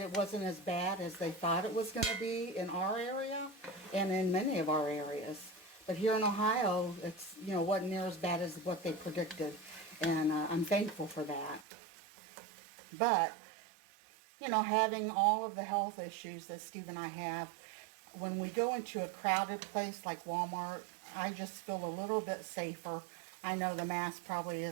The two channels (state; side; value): drops out; left; at 11.7 s